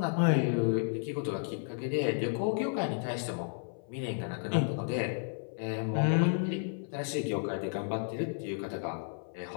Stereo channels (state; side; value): silent; right; 56 dB below the other